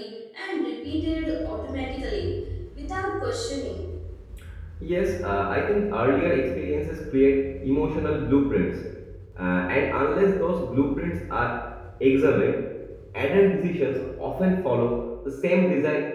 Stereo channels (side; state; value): both; identical; correlation 1.00